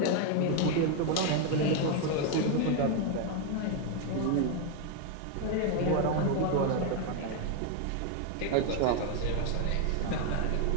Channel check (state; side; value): different; both; correlation 0.01